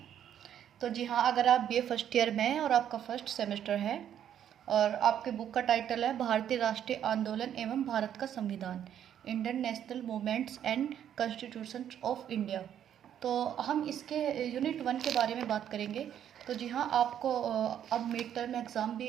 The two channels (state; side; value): quieter; left; 9.9 dB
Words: तो जी हाँ, अगर आप बीए फर्स्ट ईयर में हैं और आपका फर्स्ट सेमेस्टर है और आपके बुक का टाइटल है भारतीय राष्ट्रीय आंदोलन एवं भारत का संविधान, Indian national movements and constitution of India, तो हम इसके यूनिट 1 के बारे में बात करेंगे। तो जी हाँ, आपको अब मिड टर्म एग्ज़ाम